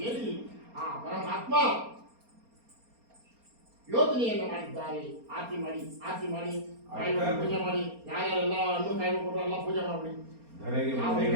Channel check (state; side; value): late; left; 4.3 ms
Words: ಹೇಳಿ ಆ ಪರಮಾತ್ಮ ಯೋಚನೆಯನ್ನು ಮಾಡಿದ್ದಾರೆ. ಆರತಿ ಮಾಡಿ ಪೂಜೆ ಮಾಡಿ ಯಾರ್ಯಾರೆಲ್ಲ ಹಣ್ಣು ಕಾಯಿ ಕೊಟ್ಟರು ಎಲ್ಲ ಪೂಜೆ ಮಾಡಿ ಧರೆಗೆ